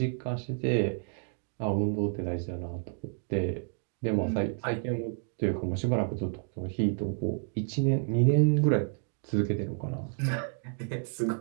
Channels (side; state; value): left; silent; 58 dB below the other